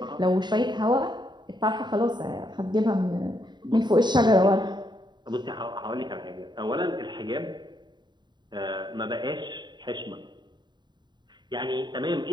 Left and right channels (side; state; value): left; late; 0.21 ms